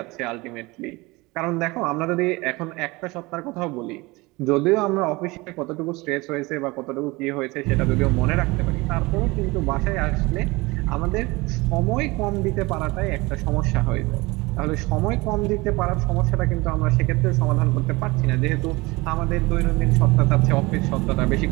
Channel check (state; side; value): quieter; left; 23.1 dB